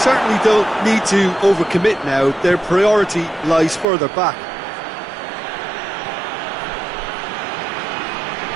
don't need to overcommit now. Their priority lies further back.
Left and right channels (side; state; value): left; drops out; at 3.9 s